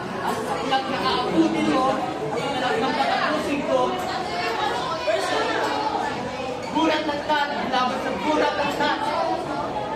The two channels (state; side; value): identical; both; correlation 1.00